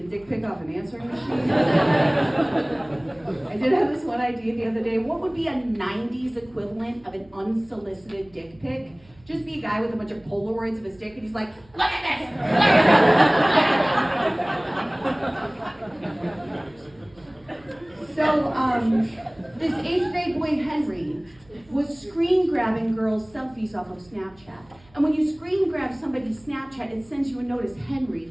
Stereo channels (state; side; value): noise; right; hum, 28 dB below the sound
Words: a dick pic off an answering machine? I did have this one idea the other day. What would be a 90s equivalent of an unsolicited dick pic? Just be a guy with a bunch of Polaroids of his dick, and he's like, look at this! So, this 8th grade boy, Henry, was screen grabbing girls' selfies off of Snapchat. And when you screen grab somebody's Snapchat, it sends you a notice, Henry,